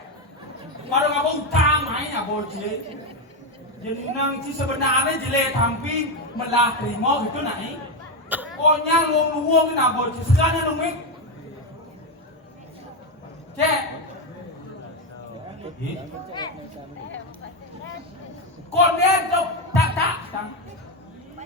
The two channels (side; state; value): both; normal; correlation 0.09